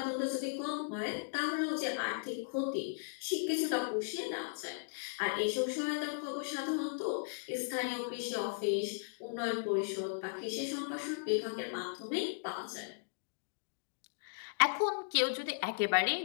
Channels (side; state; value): right; silent; digital silence